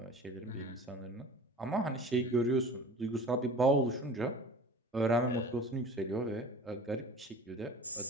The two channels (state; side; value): normal; both; correlation 0.40